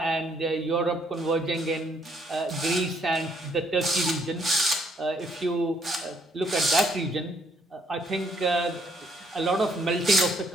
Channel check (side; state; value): both; normal; correlation 0.68